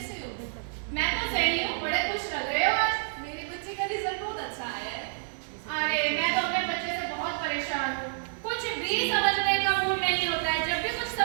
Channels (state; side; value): silent; left; digital silence